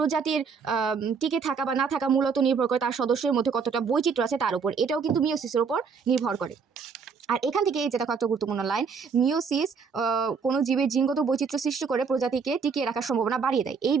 টিকে থাকা বা না থাকা মূলত নির্ভর করে তার সদস্যের মধ্যে কতটা বৈচিত্র্য আছে তার উপর। এটাও কিন্তু মিওসিসের উপর নির্ভর করে। আর এখান থেকে এই যে দেখো একটা গুরুত্বপূর্ণ লাইন, মিওসিস কোনো জীবের জিনগত বৈচিত্র্য সৃষ্টি করে প্রজাতিকে টিকিয়ে রাখার সম্ভাবনা বাড়িয়ে দেয়। এই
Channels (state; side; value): quieter; left; 5.7 dB